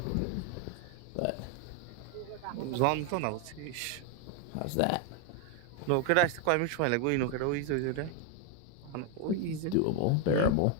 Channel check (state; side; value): different; both; correlation 0.01